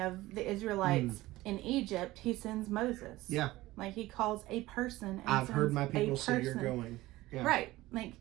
the Israelites in Egypt, he sends Moses. Yeah. He calls a person. And I've heard my people say you're going. Yeah. Right.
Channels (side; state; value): left; quieter; 17.9 dB